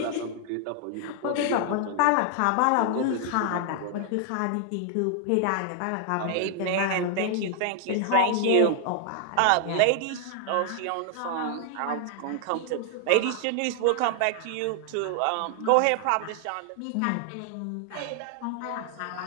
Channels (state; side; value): different; both; correlation 0.00